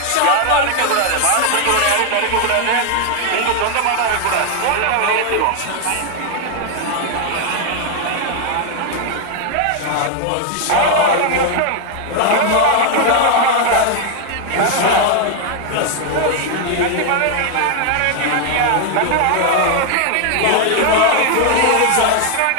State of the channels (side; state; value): both; different; correlation 0.00